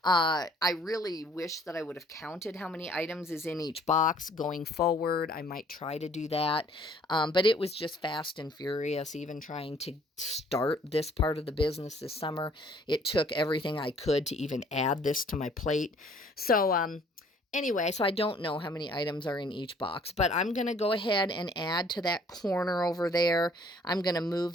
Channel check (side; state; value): both; normal; correlation 0.59